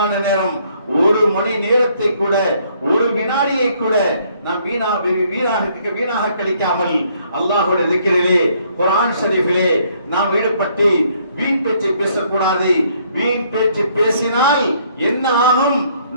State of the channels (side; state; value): both; inverted; correlation -0.67